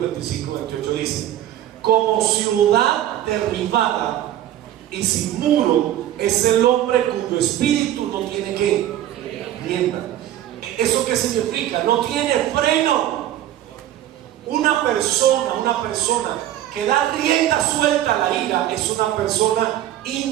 25:28 dice, como ciudad derribada y sin muro es el hombre cuyo espíritu no tiene ¿qué? Rienda. ¿Eso qué significa? No tiene freno. Una persona que da rienda suelta a la ira es una persona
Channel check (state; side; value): quieter; left; 12.5 dB